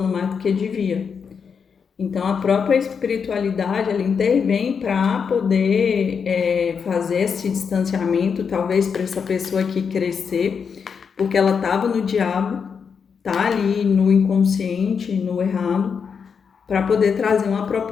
mais do que devia. Então a própria espiritualidade ela intervém para poder fazer esse distanciamento, talvez para essa pessoa aqui crescer, porque ela estava no diabo, tá ali no inconsciente, no errado, para poder trazer uma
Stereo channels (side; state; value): right; quieter; 6.3 dB